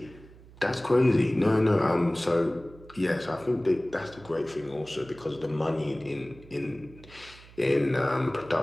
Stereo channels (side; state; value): right; noise; hum, 21 dB below the sound